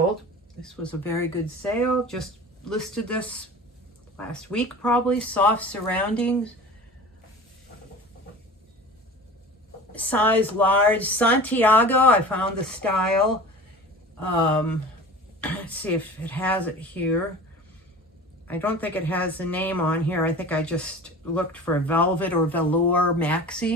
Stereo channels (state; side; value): normal; both; correlation 0.38